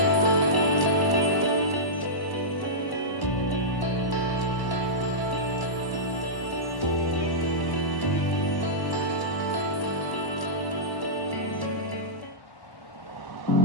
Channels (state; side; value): late; right; 1.1 ms